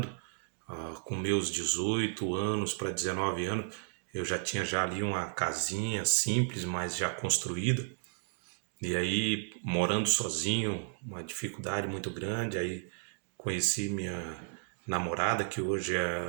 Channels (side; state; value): left; silent; digital silence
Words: Com meus 18 anos para 19 anos, eu já tinha já ali uma casinha simples, mas já construída. E aí, morando sozinho, uma dificuldade muito grande. Aí conheci minha namorada, que hoje